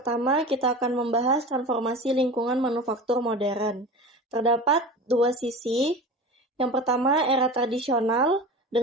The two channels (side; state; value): both; normal; correlation 0.32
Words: kita akan membahas transformasi lingkungan manufaktur modern. Terdapat dua sisi. Yang pertama, era tradisional